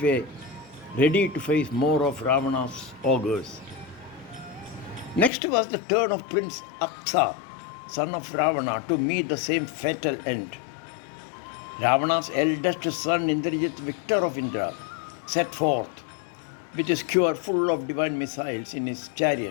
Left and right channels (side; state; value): right; drops out; at 5.3 s